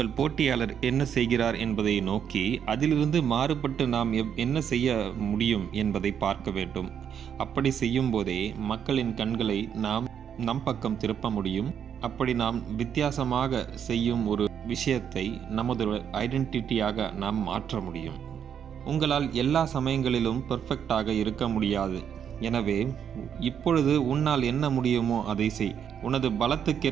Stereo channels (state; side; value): quieter; left; 8.3 dB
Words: போட்டியாளர் என்ன செய்கிறார் என்பதை நோக்கி அதிலிருந்து மாறுபட்டு நாம் என்ன செய்ய முடியும் என்பதை பார்க்க வேண்டும். அப்படி செய்யும் போதே மக்களின் கண்களை நாம் நம் பக்கம் திருப்ப முடியும். அப்படி நாம் வித்தியாசமாக செய்யும் ஒரு விஷயத்தை நமது ஐடென்டிட்டியாக நாம் மாற்ற முடியும். உங்களால் எல்லா சமயங்களிலும் பெர்ஃபெக்டாக இருக்க முடியாது. எனவே இப்பொழுது உன்னால் என்ன முடியுமோ அதை செய். உனது